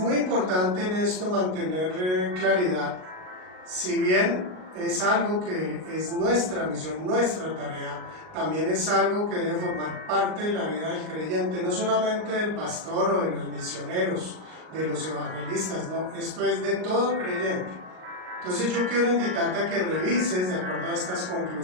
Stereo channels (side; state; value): left; late; 38 ms